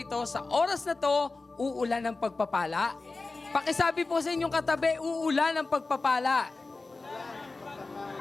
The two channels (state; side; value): quieter; right; 3.7 dB